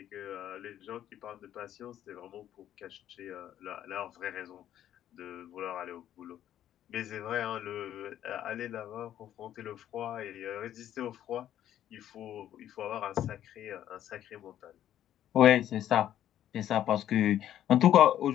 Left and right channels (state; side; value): quieter; right; 11.4 dB